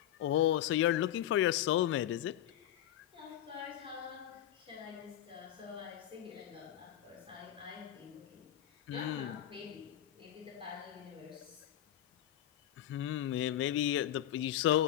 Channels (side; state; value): right; quieter; 11.9 dB